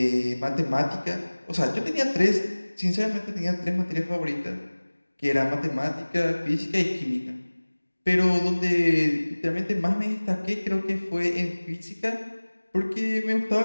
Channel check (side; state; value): both; inverted; correlation -1.00